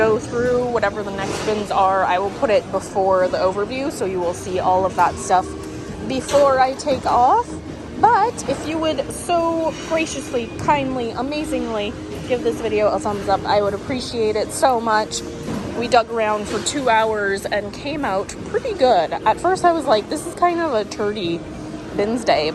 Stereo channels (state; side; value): identical; both; correlation 1.00